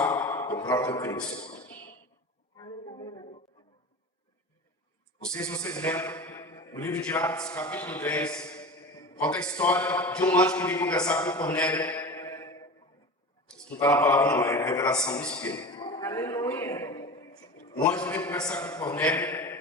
o próprio Cristo. Não sei se vocês lembram, no livro de Atos, capítulo 10, conta a história de um anjo que veio conversar com Cornélio. Isso não está na palavra, não, é a revelação do Espírito. Aleluia. O anjo veio conversar com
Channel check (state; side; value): normal; both; correlation 0.31